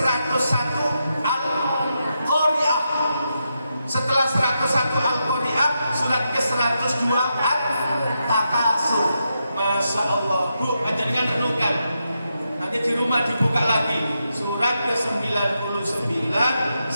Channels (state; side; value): inverted; both; correlation -0.85